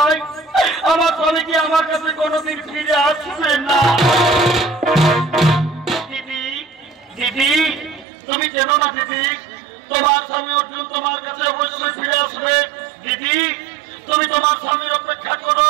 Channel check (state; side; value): drops out; left; at 8.1 s